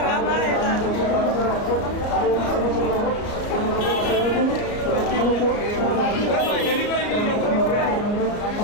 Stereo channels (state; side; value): late; right; 34 ms